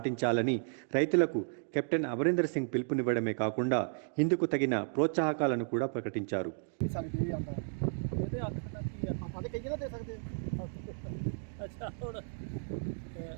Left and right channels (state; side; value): silent; left; digital silence